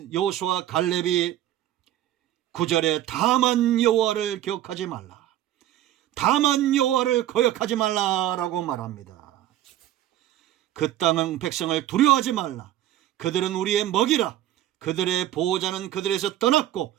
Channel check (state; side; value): quieter; left; 12.9 dB